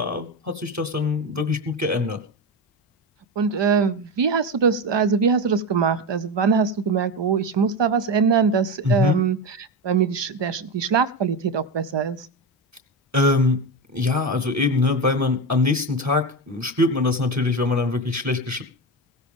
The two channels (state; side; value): normal; both; correlation 0.18